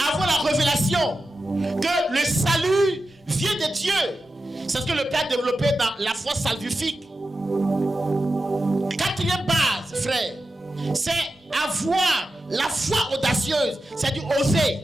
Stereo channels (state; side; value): normal; both; correlation 0.91